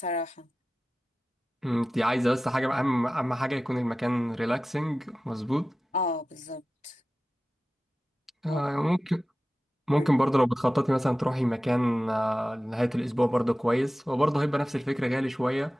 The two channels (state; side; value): normal; both; correlation 0.95